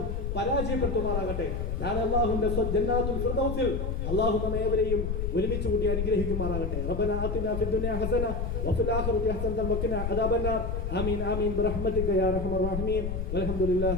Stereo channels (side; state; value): left; noise; rumble, 2 dB below the sound